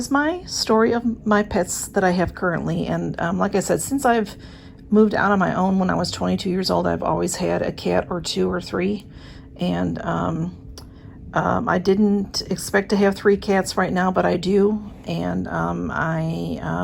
my story of my pets that I have currently, and like I said, since I've moved out on my own when I was 22 years old, I've always had a cat or two or three, and I didn't expect to have 3 cats right now, but I do, and I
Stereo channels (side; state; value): both; identical; correlation 1.00